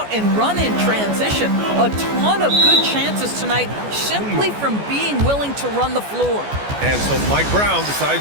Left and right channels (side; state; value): left; late; 14 ms